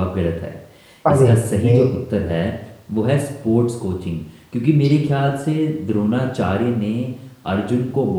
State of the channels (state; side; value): identical; both; correlation 1.00